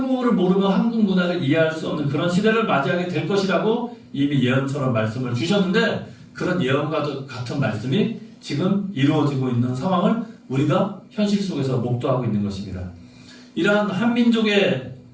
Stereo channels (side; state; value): both; identical; correlation 1.00